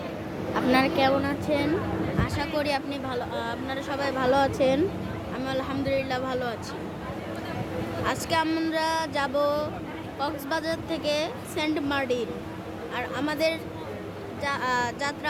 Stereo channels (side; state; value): both; identical; correlation 1.00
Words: আপনারা কেমন আছেন? আশা করি আপনারা সবাই ভালো আছেন। আমি আলহামদুলিল্লাহ ভালো আছি। আজকে আমরা যাব কক্সবাজার থেকে সেন্ট মার্টিন। আর আমাদের